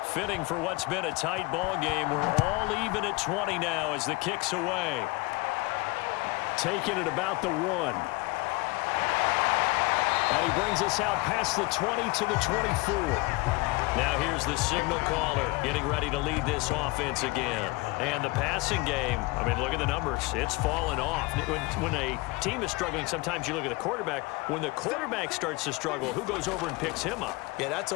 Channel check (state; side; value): quieter; right; 23.9 dB